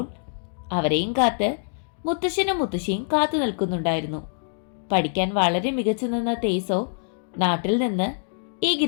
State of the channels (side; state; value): right; silent; 62 dB below the other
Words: അവരെയും കാത്ത് മുത്തശ്ശനും മുത്തശ്ശിയും കാത്തു നിൽക്കുന്നുണ്ടായിരുന്നു. പഠിക്കാൻ വളരെ മികച്ചു നിന്ന തേസോ നാട്ടിൽ നിന്ന് ഈ